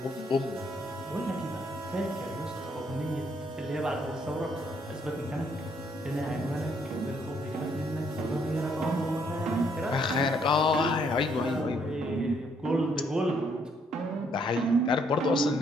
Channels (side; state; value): both; normal; correlation 0.70